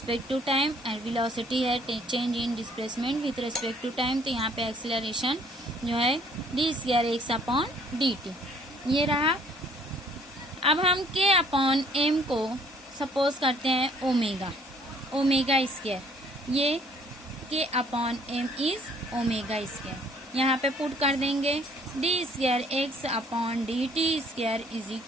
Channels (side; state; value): both; normal; correlation 0.60